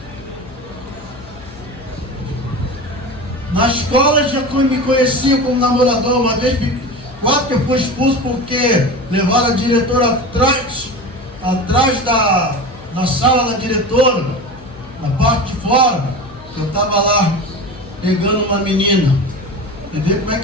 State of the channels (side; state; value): left; noise; hum, 21 dB below the sound